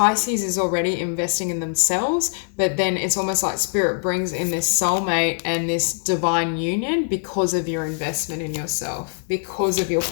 is already investing in themselves, but then it's almost like Spirit brings in this soulmate and this divine union because of your investment in yourself, because of your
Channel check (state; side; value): silent; right; digital silence